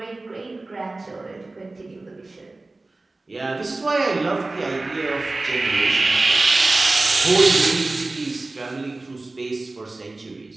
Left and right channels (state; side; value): quieter; left; 3.1 dB